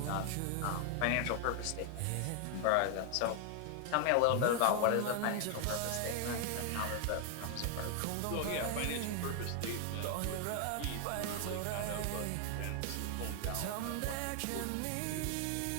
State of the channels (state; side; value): different; both; correlation 0.00